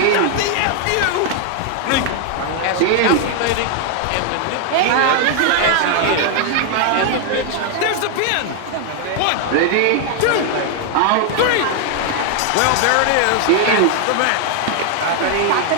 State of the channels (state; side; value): different; both; correlation 0.00